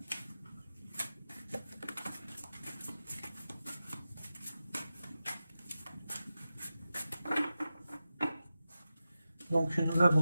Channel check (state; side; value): inverted; both; correlation -0.92